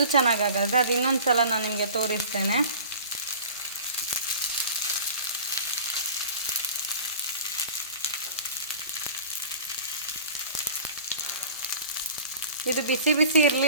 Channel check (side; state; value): both; inverted; correlation -0.41